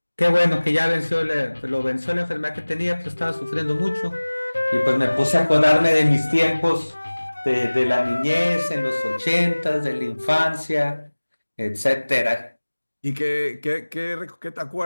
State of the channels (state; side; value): inverted; both; correlation -1.00